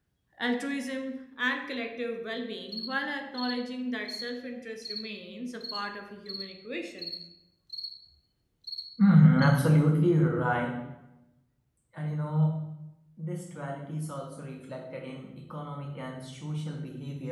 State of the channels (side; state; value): both; identical; correlation 1.00